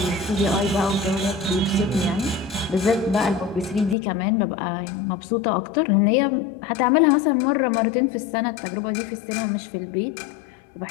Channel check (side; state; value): right; drops out; at 4.0 s